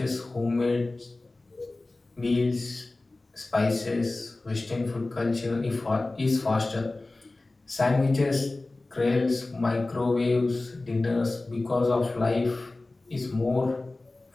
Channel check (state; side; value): quieter; right; 3.1 dB